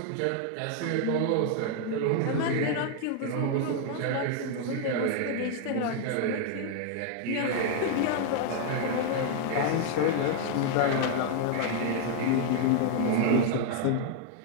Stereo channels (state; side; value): different; both; correlation 0.00